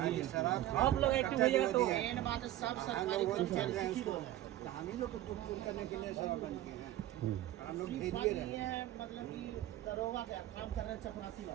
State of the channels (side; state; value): left; quieter; 14.1 dB